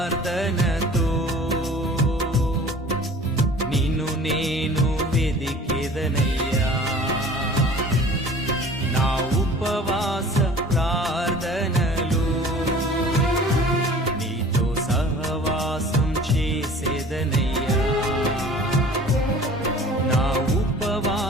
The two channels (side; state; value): both; normal; correlation 0.46